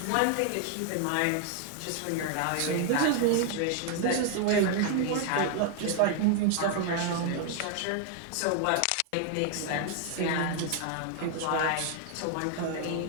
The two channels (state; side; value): different; both; correlation 0.00